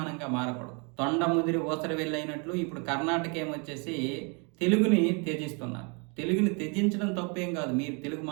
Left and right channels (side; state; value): left; quieter; 34.1 dB